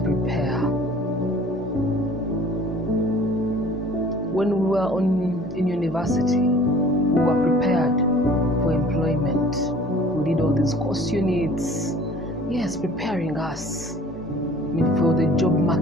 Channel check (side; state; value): both; normal; correlation 0.49